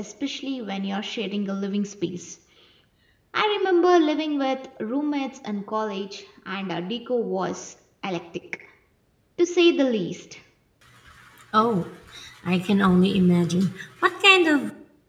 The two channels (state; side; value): identical; both; correlation 1.00